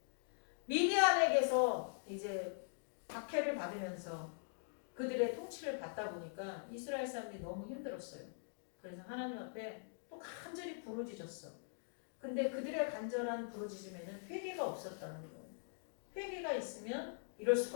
미디안에게서 이제 박해를 받으면서 그들의 통치를 받다 보니까 이스라엘 사람들이 너무 힘들었어요. 그래서 하나님 앞에 또 간절히 부르짖었어. 근데 그들의 간절한 부르짖음에는 회개가 없었다는 거예요. 회개가 있으면 이럴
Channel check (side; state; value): right; silent; digital silence